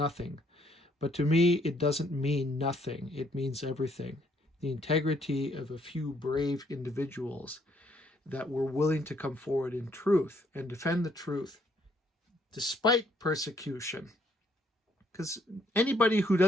But to me, it doesn't mean nothing. It means everything. The integrity of a few brave individuals that were willing to come forward in truth and defend the truth despite persecution. Because anybody who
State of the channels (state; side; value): normal; both; correlation 0.68